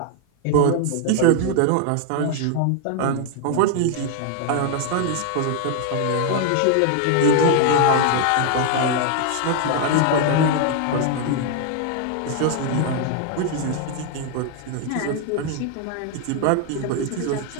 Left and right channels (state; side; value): different; both; correlation 0.00